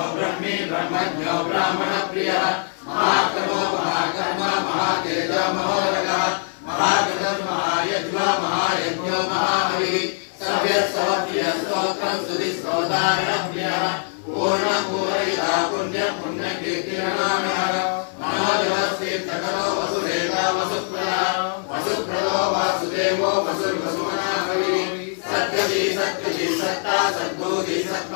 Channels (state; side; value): silent; right; digital silence